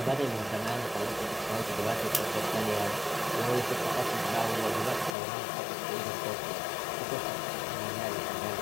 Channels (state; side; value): drops out; right; at 5.2 s